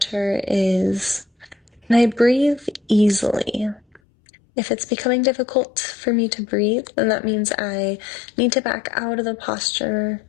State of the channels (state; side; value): drops out; right; at 4.0 s